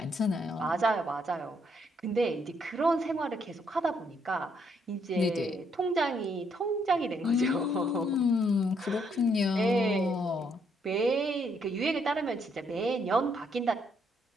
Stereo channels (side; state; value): both; normal; correlation 0.72